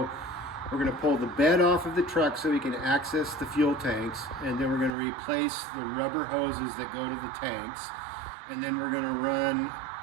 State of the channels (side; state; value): left; drops out; at 4.9 s